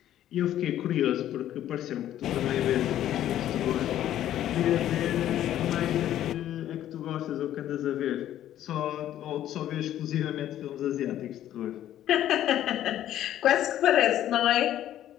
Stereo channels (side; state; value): right; quieter; 12.1 dB